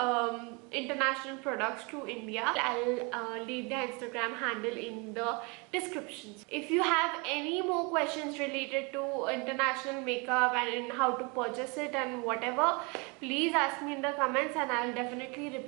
international products to India. I'll leave the Instagram handle in the descriptions. If you have any more questions related to international makeup and in how to purchase it and whatever, please ask me in the comments and I'll definitely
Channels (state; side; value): quieter; left; 30.5 dB